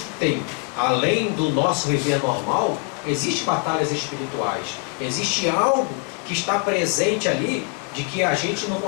além do nosso viver normal, existem batalhas espirituais. Existe algo que está presente ali, de que a gente não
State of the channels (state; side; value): quieter; right; 35.3 dB